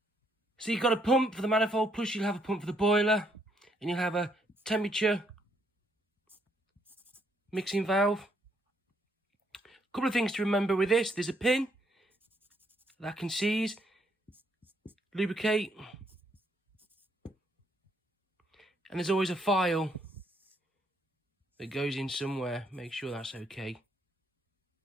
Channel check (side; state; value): both; normal; correlation 0.72